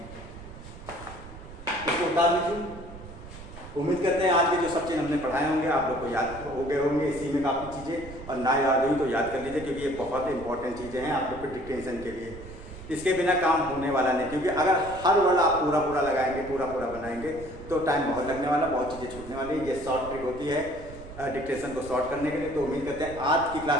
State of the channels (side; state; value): right; noise; rumble, 15 dB below the sound